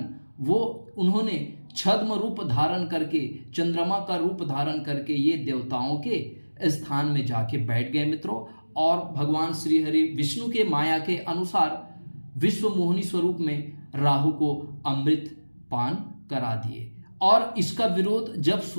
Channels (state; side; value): inverted; both; correlation -1.00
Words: उन्होंने छद्म रूप धारण करके, चंद्रमा का रूप धारण करके ये देवताओं के स्थान में जाके बैठ गए। मित्रों, और भगवान श्री हरि विष्णु के माया के अनुसार विश्व मोहिनी स्वरूप में राहु को अमृत पान करा दिए। और इसका विरोध जब